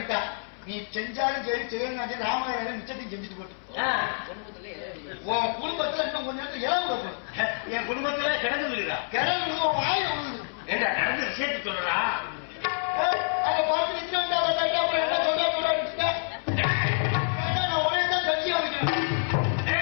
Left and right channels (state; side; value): silent; right; 60 dB below the other